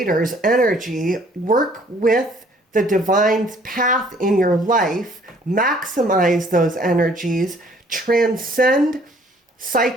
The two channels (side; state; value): both; normal; correlation 0.59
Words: energy, work with the divine path in your life, maximize those energies, transcend